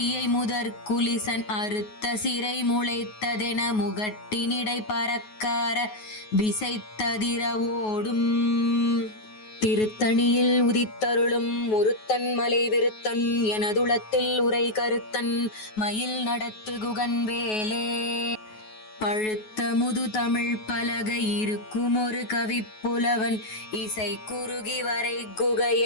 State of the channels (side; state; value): right; late; 9.3 ms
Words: முதற்குலிசன் அறுத்த சிறை முளைத்ததென முகட்டினிடை பறக்கார விசைத்ததிர ஓடும். திருத்தணியில் உதித்தருளும் ஒருத்தன் மலை விருத்தன் எனதுளத்தில் உரை கருத்தன் மயில் நடத்து குகன் வேலே. பழுத்த முது தமிழ் பலகை இருக்கும் ஒரு கவிப்புலவன் இசை குறுகி வரை